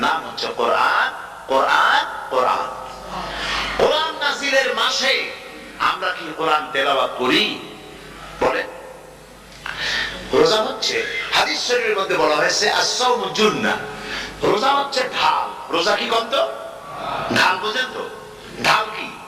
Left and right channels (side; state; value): both; identical; correlation 1.00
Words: নাম হচ্ছে কোরআন। কোরআন কোরআন কোরআন নাযিলের মাসে আমরা কি কোরআন তেলাওয়াত করি? বলে রোজা হচ্ছে, হাদিস শরীফের মধ্যে বলা হয়েছে as-সাওমু জুন্নাহ, রোজা হচ্ছে ঢাল। রোজা কি কত ঢাল বোঝেন তো? ঢাল কি?